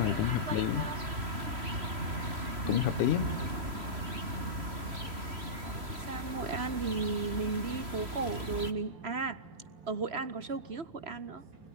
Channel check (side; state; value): left; late; 3.0 ms